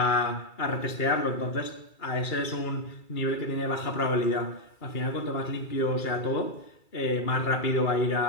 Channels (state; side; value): late; right; 2.3 ms